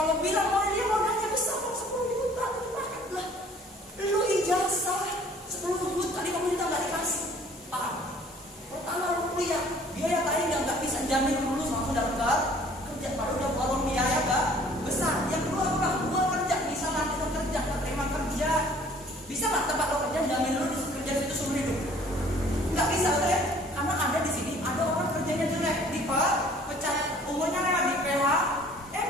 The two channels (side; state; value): both; normal; correlation 0.54